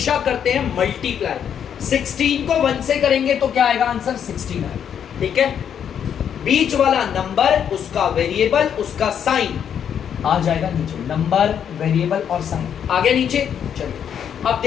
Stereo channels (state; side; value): quieter; right; 8.5 dB